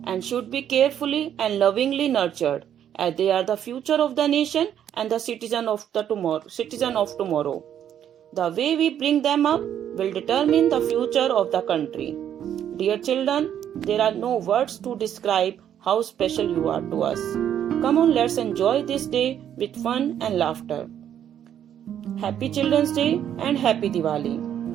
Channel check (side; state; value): left; quieter; 9.9 dB